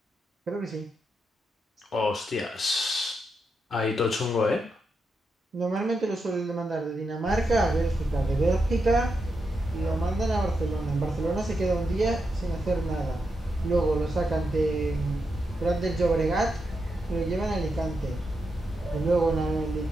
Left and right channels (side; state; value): both; normal; correlation 0.85